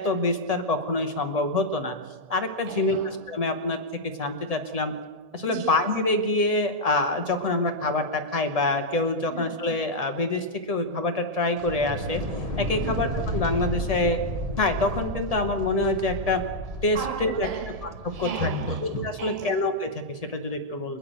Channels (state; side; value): late; left; 1.7 ms